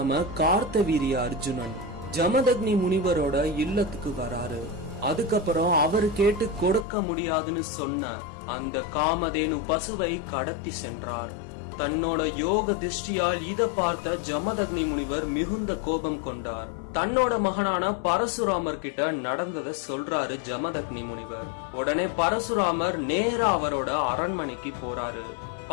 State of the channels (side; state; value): right; drops out; at 6.9 s